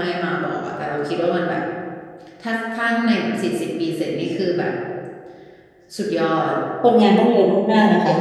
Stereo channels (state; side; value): identical; both; correlation 1.00